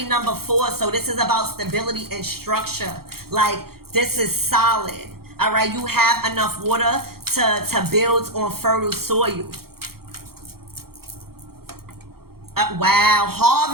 number 4. So this is about stability and structure. Like, this is solid. All right. You have enough water to build on fertile soil. Wow.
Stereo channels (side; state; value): left; late; 0.94 ms